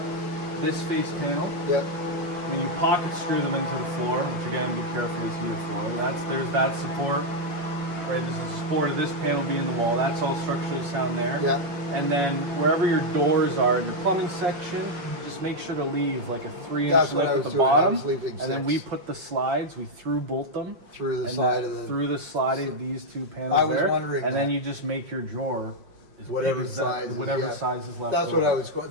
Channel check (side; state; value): left; late; 5.6 ms